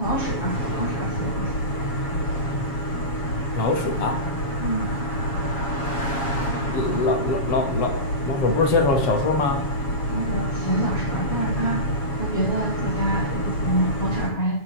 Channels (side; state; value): right; late; 7.3 ms